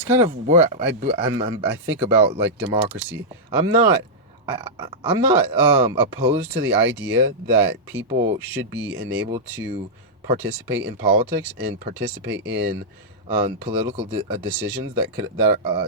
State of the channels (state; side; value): normal; both; correlation -0.08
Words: kind of what I think about like democracy. I'm not opposed to the idea that people should be enabled to participate in politics and participate in political decisions that